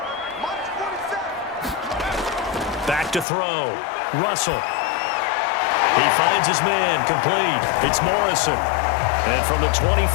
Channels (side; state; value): right; drops out; at 3.2 s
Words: Back to throw. Russell. He finds his man. Complete. It's Morrison. And from the